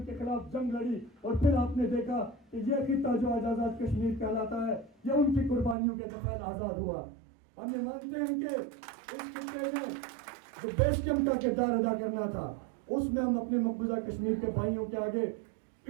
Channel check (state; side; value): drops out; left; at 5.8 s